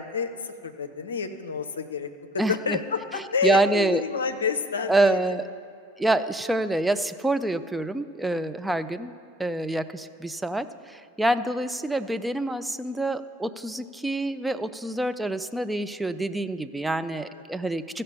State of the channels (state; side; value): normal; both; correlation 0.61